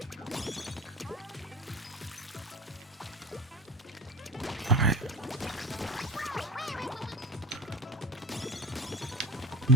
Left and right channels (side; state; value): both; normal; correlation 0.30